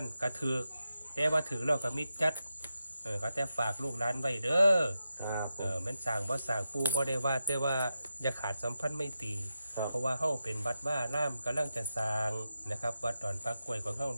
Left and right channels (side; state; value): both; inverted; correlation -0.89